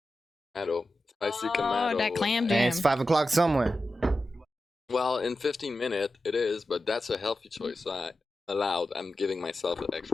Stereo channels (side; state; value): both; normal; correlation 0.92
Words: tomato, spicy Oh, tomato. that clam And jam. it's 5 o'clock somewhere. Well, in 15 minutes it is, but that's a healthy choice. So allowed. I'm giving myself an